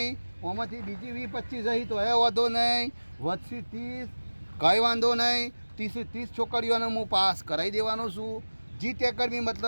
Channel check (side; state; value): both; inverted; correlation -1.00